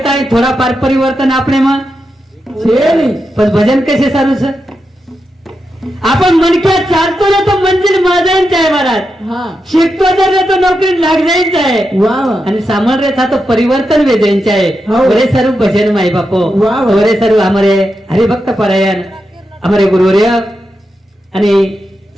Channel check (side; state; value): both; normal; correlation 0.87